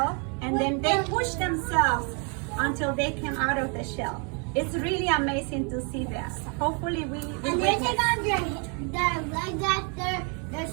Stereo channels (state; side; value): quieter; left; 37.1 dB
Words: and then they push themselves until they come out of the shell. It's really amazing to see that. Hopefully we And they witness. take on their legs after they're